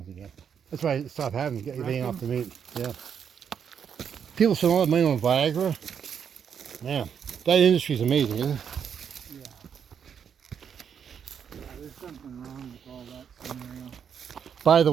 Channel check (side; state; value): left; quieter; 7.7 dB